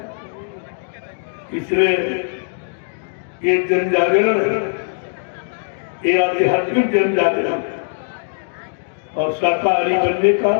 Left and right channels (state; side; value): silent; right; digital silence